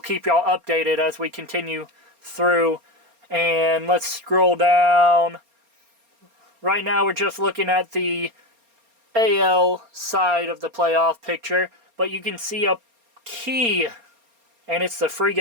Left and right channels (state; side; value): late; left; 4.3 ms